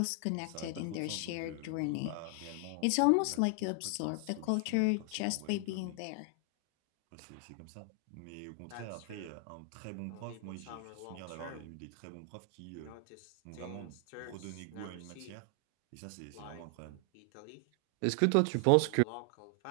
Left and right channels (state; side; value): different; both; correlation 0.00